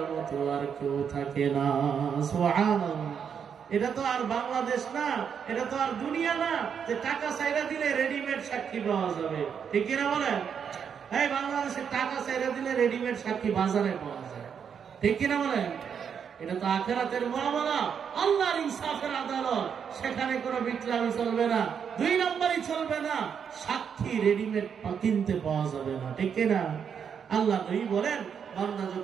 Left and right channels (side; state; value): left; quieter; 7.3 dB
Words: মতো আর কেউ থাকে না। সুবহানাল্লাহ। এটা তো আর বাংলাদেশ না, এটা তো আর দুনিয়া না যে টাকা চাইরা দিলে রেডিমেড সাক্ষী পাওয়া যাবে, ঠিক কিনা বলেন? এই বাংলাদেশে টাকা চাইরা দিলে রেডিমেড সাক্ষী বাজারে পাওয়া যায়, ঠিক কিনা বলেন? এটা তো আখিরাতের মুআমালা, আল্লাহর ইনসাফের আদালত, সেখানে কোনো বিটলামি চলবে না, 2 নাম্বারই চলবে না, সাক্ষী রেডিমেড কিনতে পাওয়া যাবে না, ঠিক কিনা? আল্লাহ নবী বলেন, বান্দা